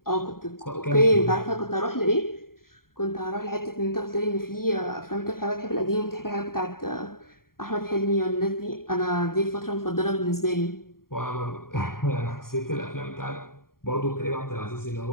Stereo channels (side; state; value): right; late; 0.92 ms